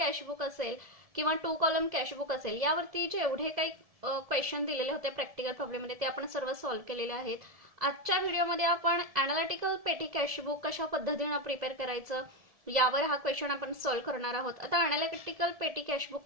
असेल किंवा 2 कॉलम कॅशबुक असेल, यावरती जेवढे काही क्वेश्चन दिलेले होते प्रॅक्टिकल प्रॉब्लेम मध्ये ते आपण सर्व सॉल्व्ह केलेले आहेत. आजच्या व्हिडिओमध्ये आपण एनालिटिकल पेटी कॅशबुक कशा पद्धतीने प्रिपेअर करायचं यावर हा क्वेश्चन आपण सॉल्व्ह करणार आहोत. आता एनालिटिकल पेटी कॅशबुक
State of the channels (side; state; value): left; late; 1.7 ms